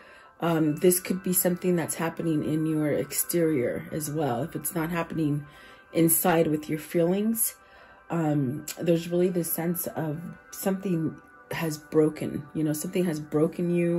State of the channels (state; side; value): identical; both; correlation 1.00